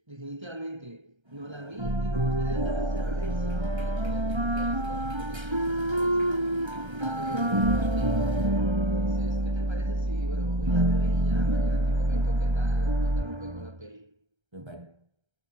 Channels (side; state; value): left; late; 1.3 ms